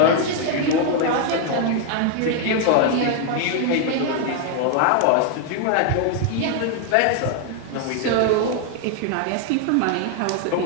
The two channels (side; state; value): both; different; correlation 0.00